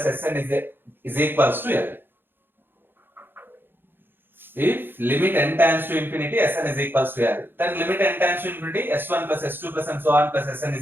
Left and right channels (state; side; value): late; left; 0.10 ms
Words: Sn is equals to L. If limit n tends to infinity Sn is equals to L, then limit n tends to infinity S1 plus S2 plus and so on plus Sn